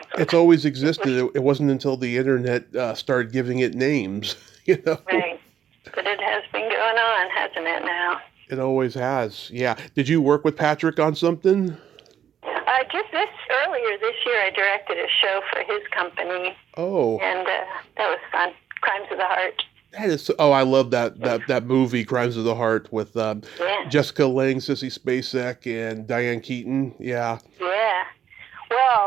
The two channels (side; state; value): left; quieter; 9.3 dB